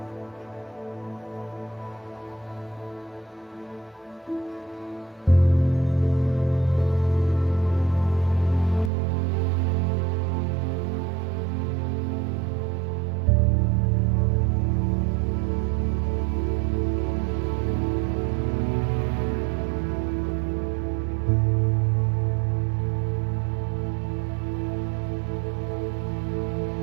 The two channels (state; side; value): drops out; left; at 8.9 s